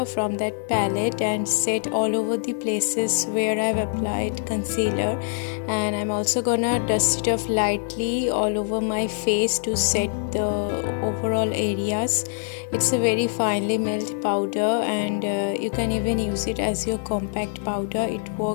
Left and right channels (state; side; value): silent; right; digital silence